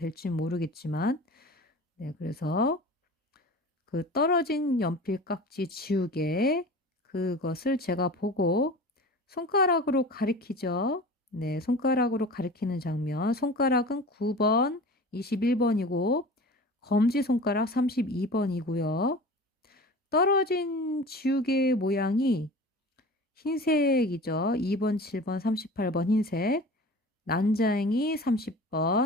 모르겠지만, 네, 그래서 그 떨어진 연필 깍지 지우개, 그것을 제가 보고 손가락으로 가리키죠. 네, 손가락으로 가리키는 장면. 손가락은 9번, 21번이고 검지손가락 32번이고요. 떨어진 지우개 모양이 흰색이죠. 2번, 7번, 38번 흰색. 난장이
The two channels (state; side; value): normal; both; correlation 0.37